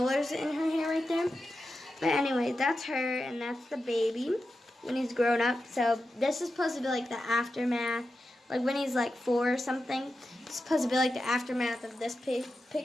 in her hair right there. But anyway, that's her, and that's the baby when he's grown up. So this is supposed to be like the aftermath. Like when he's like 4 or something, it's supposed to be like the aftermath of this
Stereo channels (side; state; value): both; normal; correlation 0.91